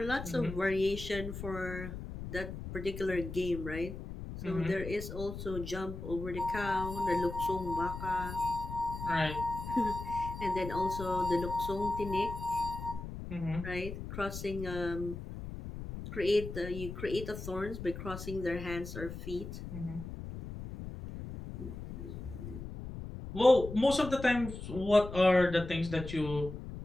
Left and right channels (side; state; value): left; noise; rumble, 9 dB below the sound